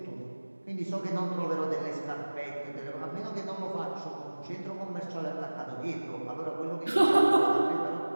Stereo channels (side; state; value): both; inverted; correlation -1.00